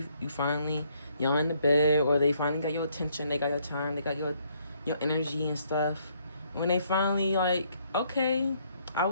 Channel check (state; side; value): inverted; both; correlation -0.69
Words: finally, y'all in the bed, or they finally got your attention, they got your time, they got your energy and stuff. When they finally like, okay,